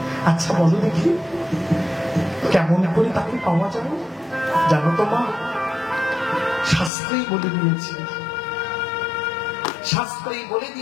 আচ্ছা বলো দেখি, কেমন করে তাকে পাওয়া যায়? জানো তো মা, শাস্ত্রেই বলে দিয়েছে, শাস্ত্রে বলে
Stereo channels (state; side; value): drops out; right; at 6.9 s